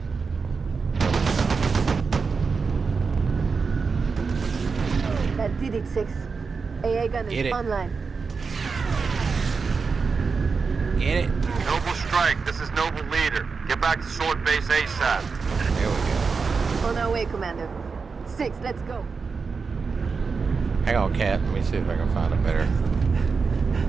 That did it, 6. AA gun Get is it. online. Get it. Noble Strike, this is Noble Leader. Get back to Sword Base ASAP. There we go. On our way, Commander. 6, let's go. Hang on, Cat. Let me see if I can find a better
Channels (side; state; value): left; quieter; 5.0 dB